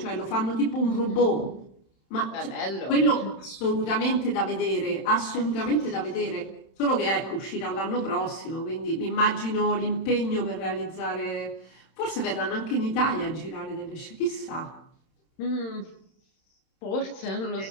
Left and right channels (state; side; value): late; right; 31 ms